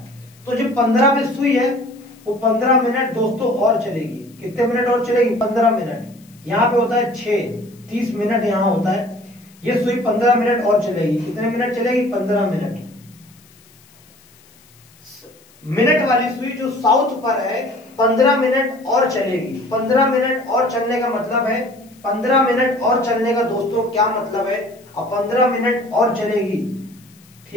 तो जो 15 में सुई है वो 15 मिनट दोस्तों और चलेगी। कितने मिनट और चलेगी? 15 मिनट। यहाँ पे होता है 6, 30 मिनट यहाँ होता है। ये सुई 15 मिनट और चलेगी। कितने मिनट चलेगी? 15 मिनट। मिनट वाली सुई जो साउथ पर है 15 मिनट और चलेगी। 15 मिनट और चलने का मतलब है, 15 मिनट और चलने का दोस्तों क्या मतलब है? अब 15 मिनट और चलेगी,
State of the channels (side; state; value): left; noise; hiss, 28 dB below the sound